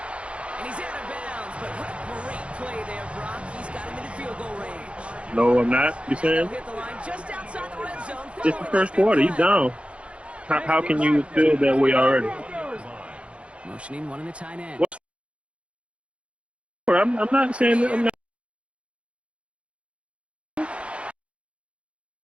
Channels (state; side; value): late; left; 0.060 ms